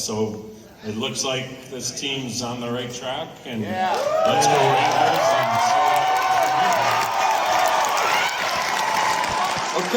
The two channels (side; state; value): both; identical; correlation 1.00